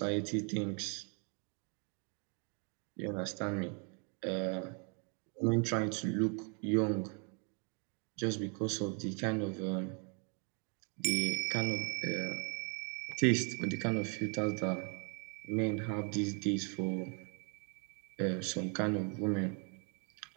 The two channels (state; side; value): quieter; left; 38.7 dB